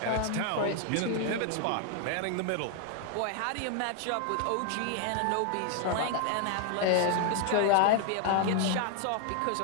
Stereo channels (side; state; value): both; different; correlation 0.00